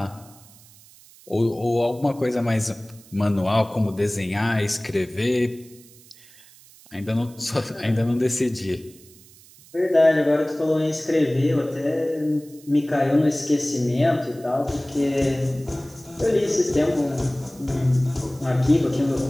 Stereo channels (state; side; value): noise; right; hiss, 24 dB below the sound